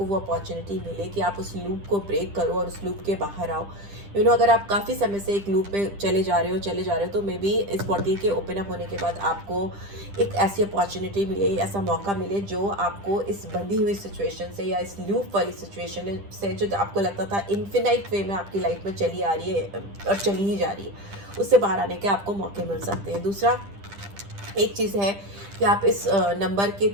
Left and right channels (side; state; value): left; late; 10 ms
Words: वो अपॉर्चुनिटी मिले कि आप उस लूप को ब्रेक करो और उस लूप के बाहर आओ। अगर आप काफ़ी समय से एक लूप में चले जा रहे हो तो मे बी इस पोर्टल के ओपन अप होने के बाद आपको एक ऐसी अपॉर्चुनिटी मिले, ऐसा मौका मिले जो आपको इस बंधी हुई सिचुएशन से या इस लूप वाली सिचुएशन से, जो आपको लगता था इन्फिनाइट वे में आपकी लाइफ में चली आ रही है और चली ही जा रही है, उससे बाहर आने के आपको मौके मिल सकते हैं। दूसरा एक चीज़ है कि आप इस नंबर के